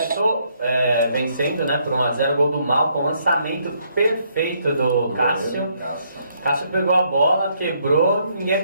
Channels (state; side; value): inverted; both; correlation -0.71